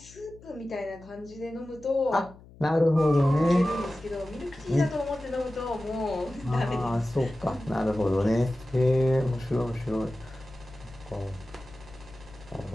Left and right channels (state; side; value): noise; left; hum, 22 dB below the sound